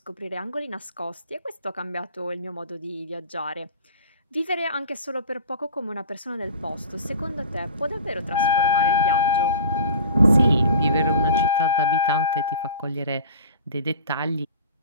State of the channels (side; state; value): both; inverted; correlation -0.40